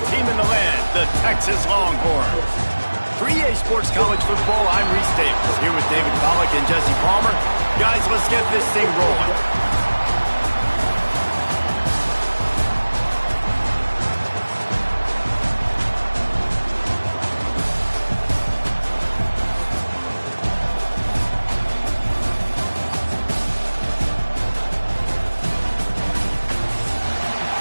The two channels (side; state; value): both; inverted; correlation -1.00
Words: team in the land, the Texas Longhorns. For EA Sports College Football, I'm Reese Davis, here with David Pollack and Jesse Palmer. Guys, let's get this thing rolling.